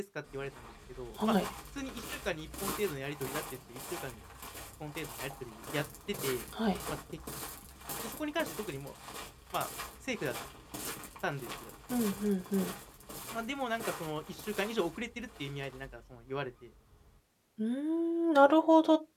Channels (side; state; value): both; identical; correlation 1.00